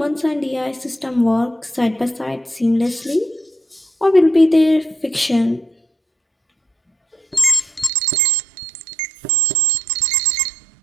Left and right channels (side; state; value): left; drops out; at 7.9 s